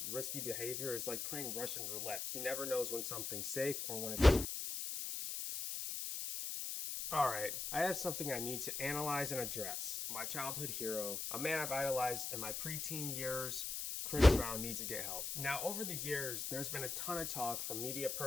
risky behavior is like playing Russian roulette. He never knows when something's safe or when it's... Alright, I have something I need to analyze and address. My childhood hero, a man I've idolized in my preteen years, Chris Brown needs to get help. Now, over the years, there's been a ton of talk from media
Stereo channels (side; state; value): left; noise; hiss, 3 dB below the sound